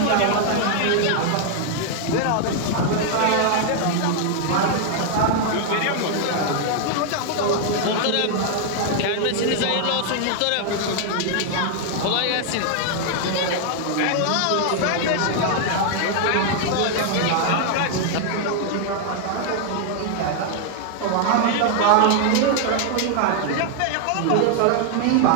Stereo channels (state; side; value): different; both; correlation 0.00